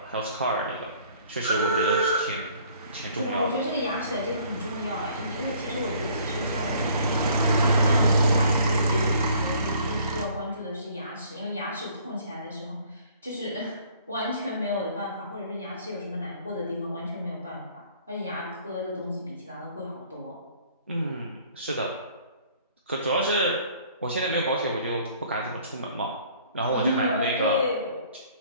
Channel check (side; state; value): both; inverted; correlation -0.57